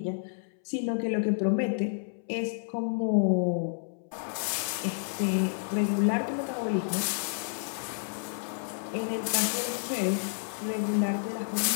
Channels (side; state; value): right; silent; 58 dB below the other